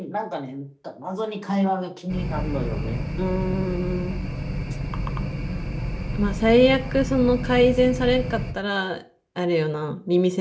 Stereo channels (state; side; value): identical; both; correlation 1.00